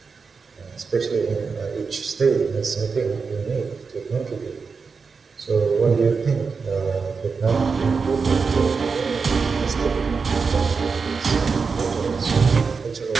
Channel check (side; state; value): left; quieter; 5.1 dB